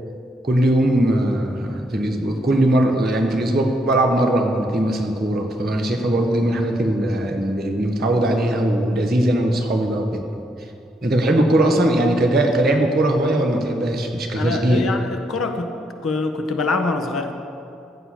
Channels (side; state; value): both; normal; correlation 0.76